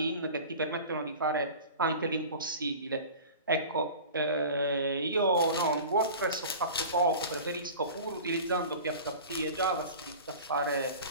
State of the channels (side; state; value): both; inverted; correlation -0.38